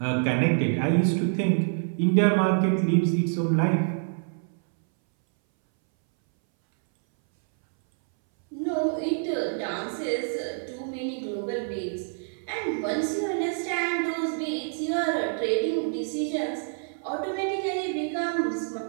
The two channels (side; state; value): left; silent; 60 dB below the other